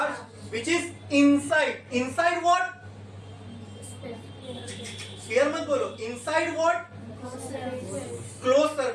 which is inside what, sphere मत बोलो, इनसाइड व्हाट, क्लोज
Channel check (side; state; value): both; identical; correlation 1.00